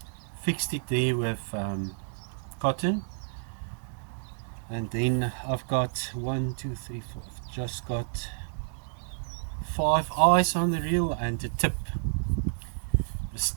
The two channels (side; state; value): left; silent; digital silence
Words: fixed it there with cotton. And then I've got 1, 2, 3, 4. I've just got 5 eyes on the reel and a tip. The